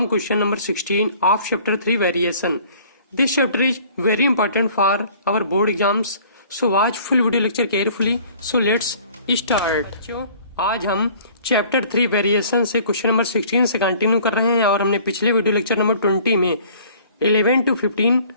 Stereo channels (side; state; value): both; inverted; correlation -0.52